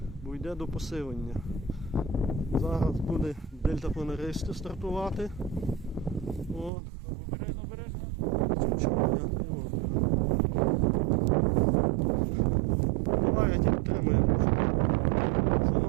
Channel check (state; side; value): drops out; left; at 6.7 s